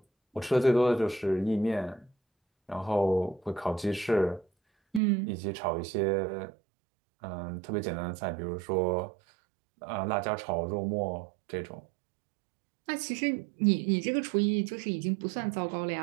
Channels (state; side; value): drops out; left; at 5.0 s